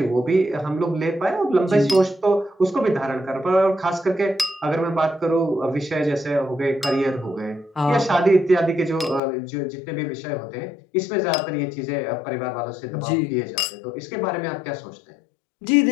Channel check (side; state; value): right; drops out; at 9.2 s